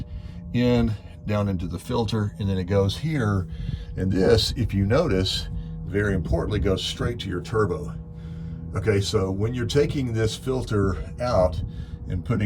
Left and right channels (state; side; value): identical; both; correlation 1.00